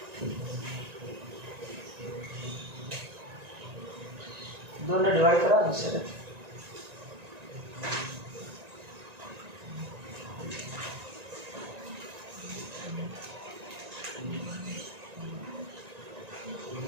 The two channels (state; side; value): late; left; 1.9 ms